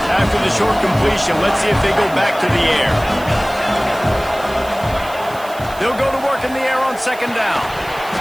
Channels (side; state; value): right; noise; hiss, 19 dB below the sound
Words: After the short completion, let's see if they go back to the air. They'll go to work in the air on 2nd down.